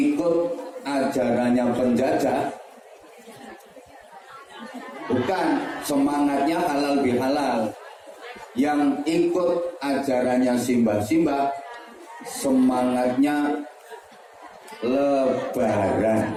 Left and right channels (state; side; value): identical; both; correlation 1.00